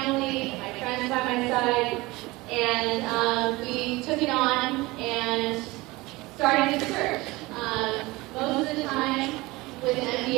my friends by my side, and we took it on and started to search. Most of the time, with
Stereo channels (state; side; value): quieter; left; 21.5 dB